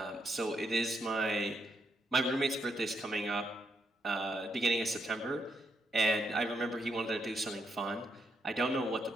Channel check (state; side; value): normal; both; correlation 0.79